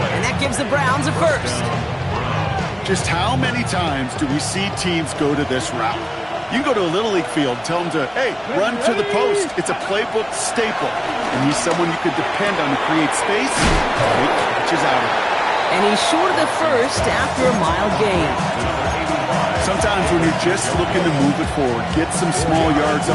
And that gives the Browns a first. Just how many times do we see teams go to this route? You can go to a Little League field, tell them to, hey, run to the post. It's a playbook staple. And he's someone you could depend on to create space. He catches out of it. And he's short of the first after a mile gain. Sometimes when you're just looking to move it forward, get some small yards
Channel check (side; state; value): both; identical; correlation 1.00